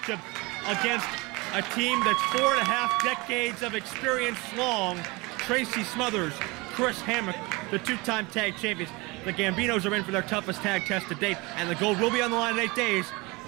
against a team that's 4.5 decades of experience long. Tracy Smothers, Chris Hammock, the 2-time tag champions. The Gambinos are in for their toughest tag test to date, and the gold will be on the line in 8 days.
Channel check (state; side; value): quieter; left; 25.0 dB